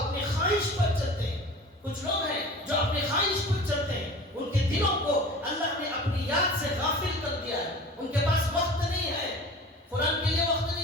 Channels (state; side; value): normal; both; correlation 0.39